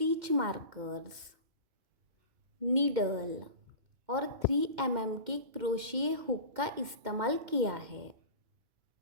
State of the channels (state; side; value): late; left; 2.1 ms